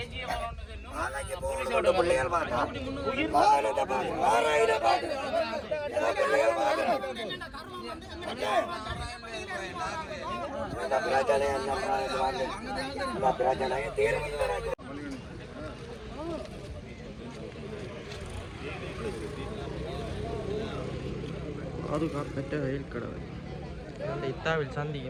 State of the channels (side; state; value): both; identical; correlation 1.00